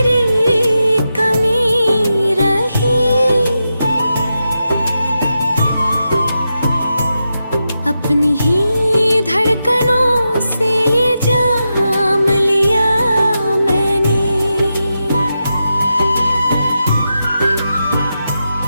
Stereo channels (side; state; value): both; inverted; correlation -0.88